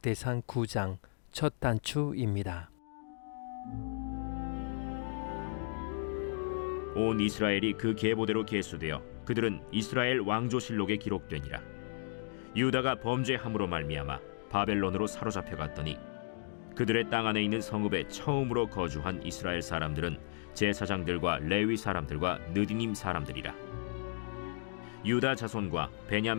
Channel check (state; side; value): silent; right; digital silence